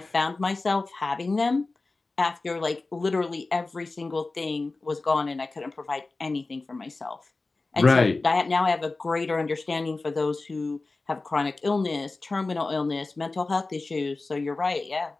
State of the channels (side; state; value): right; quieter; 3.5 dB